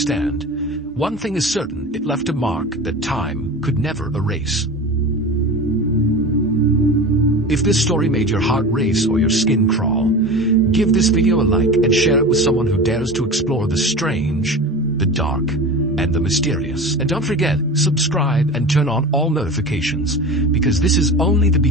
one thing is certain, it left a mark that time could never erase. If this story made your heart race or your skin crawl, give this video a like and share it with someone who dares to explore the strange, the dark, and the mysterious. And don't forget, subscribe and turn on all notifications, because this is only the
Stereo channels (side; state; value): both; normal; correlation 0.31